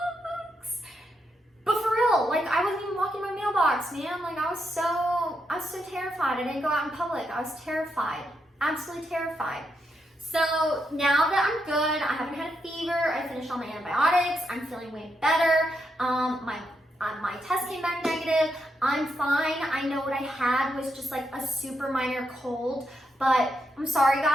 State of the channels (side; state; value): both; normal; correlation 0.81